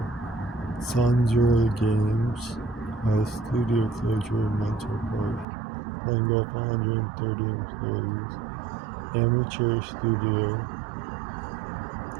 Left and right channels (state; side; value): drops out; left; at 5.5 s